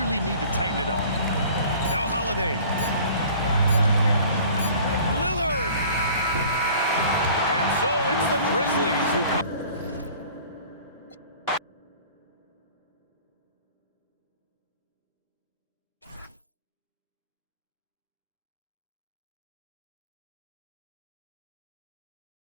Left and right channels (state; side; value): inverted; both; correlation -0.47